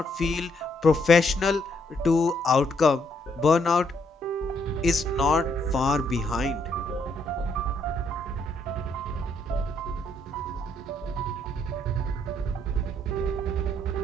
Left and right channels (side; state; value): both; normal; correlation 0.71